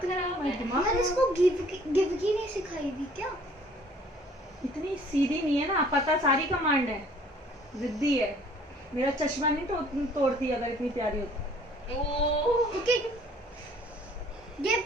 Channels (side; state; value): both; normal; correlation 0.56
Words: है, हमारा दिमाग यार इसको गिव की नहीं सिखाई थी क्या? इतनी सीधी नहीं है ना, पता सारी कमांड है, जिद्दी है। मेरा चश्मा नहीं तो तोड़ती अगर इतनी प्यारी होती। ओके गिव